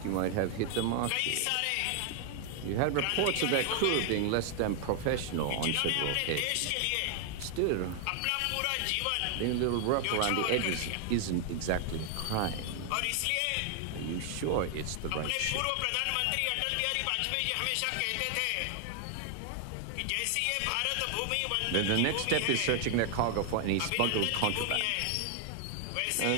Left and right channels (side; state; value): both; different; correlation 0.00